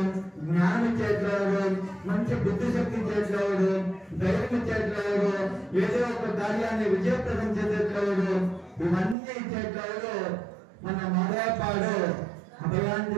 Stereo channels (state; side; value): drops out; left; at 9.2 s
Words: జ్ఞానం ఇచ్చేట్లేదు, మంచి బుద్ధి శక్తి ఇచ్చేట్లేదు, ధైర్యం ఇచ్చేట్లేదు, ఏదో ఒక కార్యాన్ని విజయప్రదం చేసేట్లేదు, ఇవన్నీ ఇచ్చేట్లేదు మన మాదాపాడు